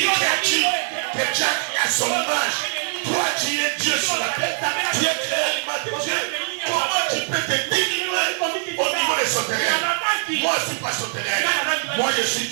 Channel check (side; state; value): left; silent; 55 dB below the other